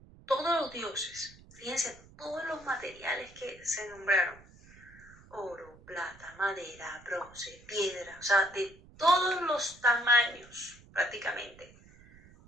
todos los dioses. Fíjense, todos los materiales que se nombraron: oro, plata, madera, bronce, piedra, o sea, de todos los tamaños prácticamente,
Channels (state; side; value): noise; right; rumble, 23 dB below the sound